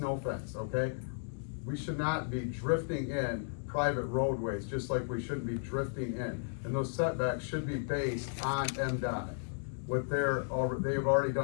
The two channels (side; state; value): right; silent; digital silence